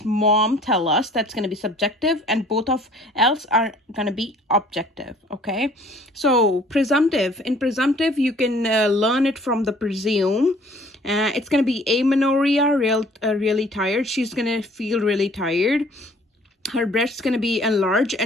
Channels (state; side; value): normal; both; correlation 0.54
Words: mom tell us. That's going to be subjective, and both of else are going to be objective. Okay, so presumptive. In presumptive, you can learn it from the presume. It's going to be amenorrhea, really tired. She's going to feel really tired. Her breast's going to be enlarged